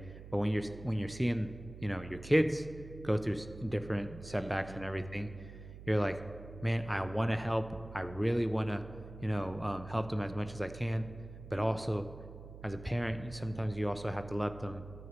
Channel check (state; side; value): noise; right; hum, 14 dB below the sound